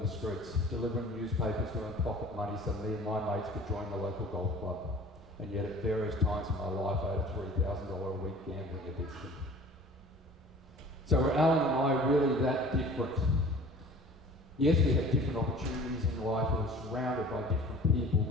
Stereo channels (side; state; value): both; normal; correlation 0.46